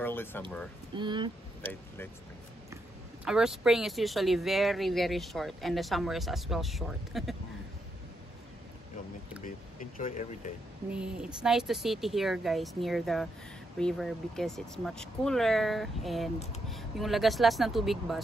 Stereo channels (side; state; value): both; normal; correlation 0.80